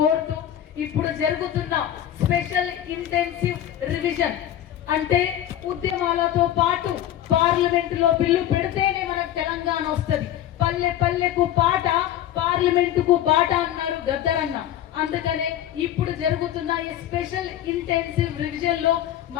ఇప్పుడు జరుగుతున్న స్పెషల్ ఇంటెన్సివ్ రివిజన్ అంటే ఉద్యమాలతో పాటు పార్లమెంటులో బిల్లు పెడితేనే మనకు తెలంగాణ వస్తుంది. పల్లె పల్లెకు పాట, పార్లమెంటుకు బాట అన్నారు గద్దరన్న. అందుకనే ఇప్పుడు జరుగుతున్న ఈ స్పెషల్ ఇంటెన్సివ్ రివిజన్ లో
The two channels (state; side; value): quieter; right; 11.7 dB